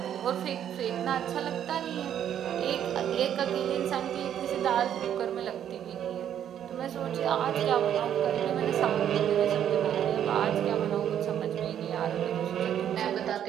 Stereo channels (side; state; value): left; quieter; 9.9 dB